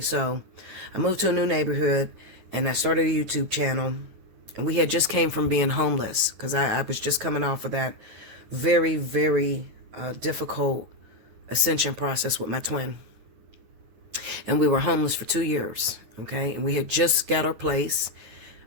I moved to a new neighborhood and I started a YouTube channel. And we had just came from being homeless because I was just coming off of that very, very difficult ascension process with my twin. And we were homeless for 2 years, okay? And we had just got our place,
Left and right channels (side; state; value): left; late; 9.3 ms